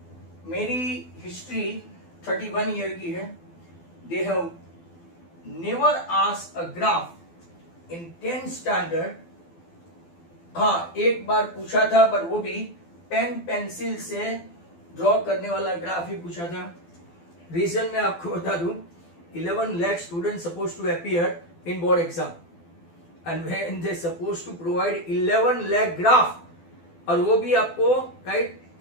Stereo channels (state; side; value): late; right; 12 ms